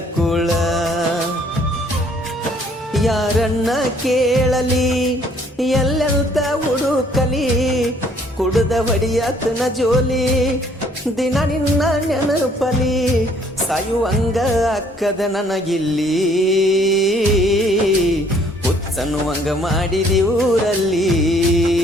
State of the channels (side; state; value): both; normal; correlation 0.62